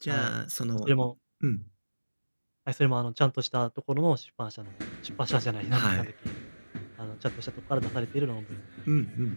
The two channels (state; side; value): inverted; both; correlation -1.00